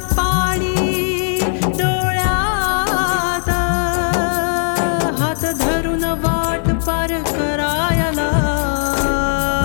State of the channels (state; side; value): silent; right; 65 dB below the other